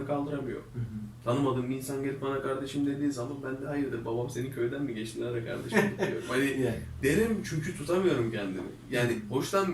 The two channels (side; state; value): both; identical; correlation 1.00